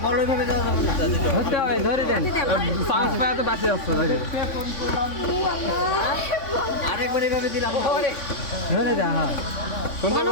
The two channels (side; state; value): right; late; 3.5 ms